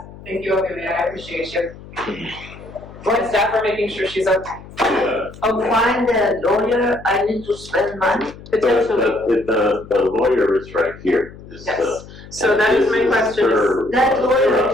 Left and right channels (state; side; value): noise; left; hum, 18 dB below the sound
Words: Thank you, Olivia. I appreciate you. Well, staff are making sure she's okay. Yeah. To find a lawyer, I need to spend money. Potentially. The lawyer is right here. Is, Yes. So that is my question. That lawyer